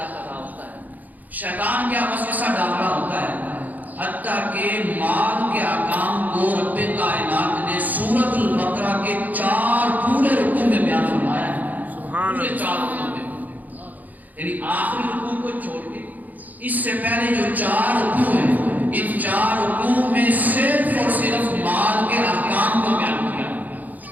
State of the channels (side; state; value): left; late; 0.081 ms